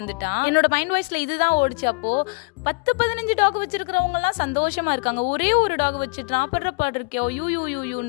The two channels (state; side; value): quieter; right; 31.3 dB